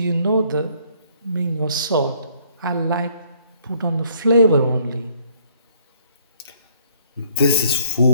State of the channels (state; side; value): inverted; both; correlation -0.63